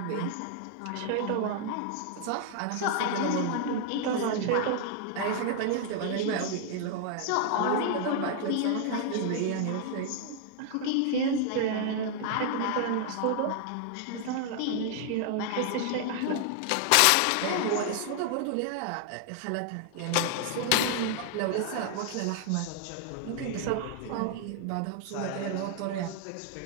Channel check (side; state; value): both; different; correlation 0.00